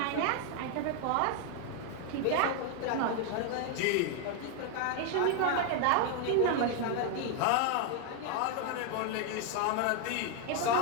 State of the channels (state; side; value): different; both; correlation 0.00